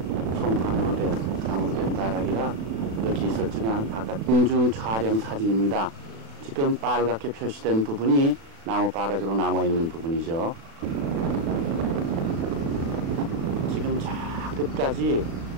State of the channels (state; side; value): late; left; 36 ms